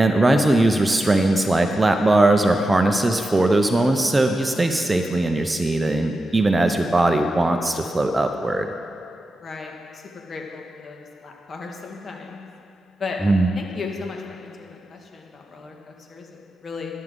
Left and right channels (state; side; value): normal; both; correlation 0.90